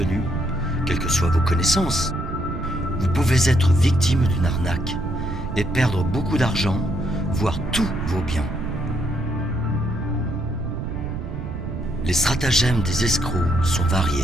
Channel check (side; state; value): right; noise; rumble, 6 dB below the sound